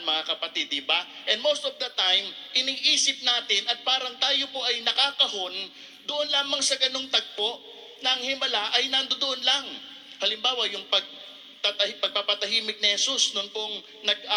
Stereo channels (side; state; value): both; identical; correlation 1.00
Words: kapatid, di ba? And most of the time, iniisip natin at parang tayo po ay nakakahon doon lamang sa ganung tagpo na ang himala ay nandoon lang. Halimbawa, yung pagpapatahimik ni Jesus noon pong